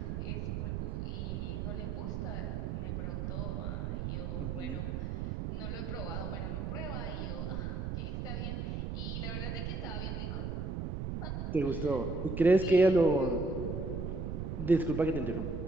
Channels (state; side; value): noise; right; rumble, 3 dB below the sound